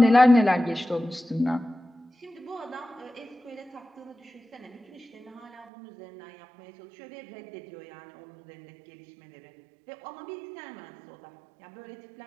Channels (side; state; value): left; drops out; at 5.7 s